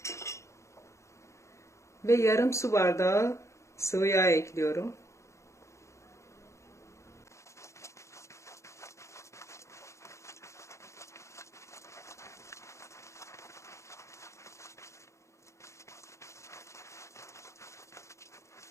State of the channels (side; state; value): right; late; 0.14 ms